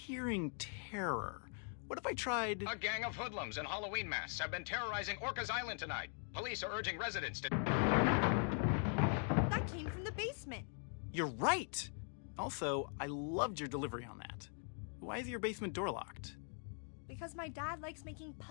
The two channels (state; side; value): silent; right; 50 dB below the other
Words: terror. What if I tried... A gang of hoodlums in Halloween masks have been terrorizing Orcas Island tonight. Police are urging residents to... That came from the basement. You're right! Also, I loved your delivery on that. Why is your basement door locked? Because my dad likes making